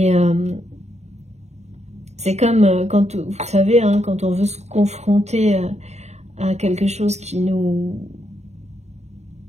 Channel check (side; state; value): left; late; 0.32 ms